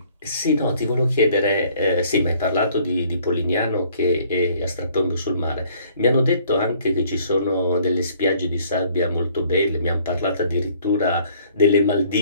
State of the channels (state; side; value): inverted; both; correlation -0.59